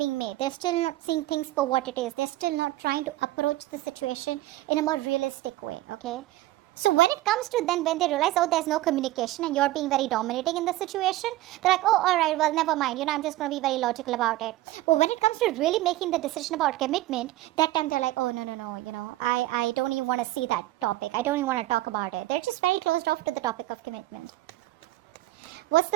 made. They're still not seeing things for what it is. They're still not trying to approach the situation in a more realistic way, okay? So when it comes to then when they realize, oh, there's no communication and you're being very dominating in the situation, they're like, oh, all right, well, never mind. I'm just going to be very logical about it. But when it comes to really making the decision about commitment, that time they're like, oh, no, I don't even want to see that topic. I don't even want to talk about it. They're just very closed off to the topic of commitment. What's the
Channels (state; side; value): quieter; left; 16.6 dB